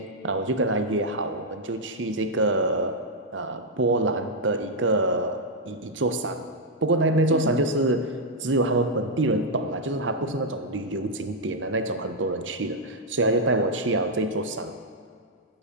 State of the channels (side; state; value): both; normal; correlation -0.03